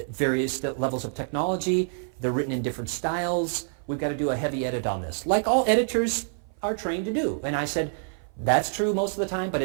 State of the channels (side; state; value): left; silent; 55 dB below the other